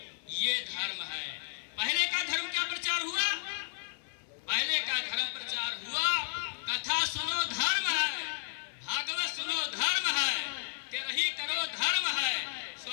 ये धर्म है। पहले का धर्म क्या प्रचार हुआ? पहले का धर्म प्रचार हुआ, कथा सुनो धर्म है, भागवत सुनो धर्म है, तेरही करो धर्म है,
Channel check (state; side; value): silent; right; 56 dB below the other